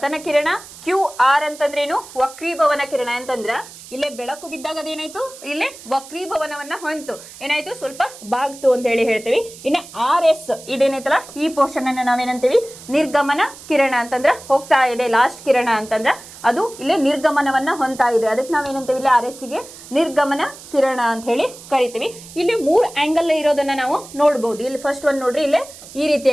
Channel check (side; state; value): right; noise; hiss, 17 dB below the sound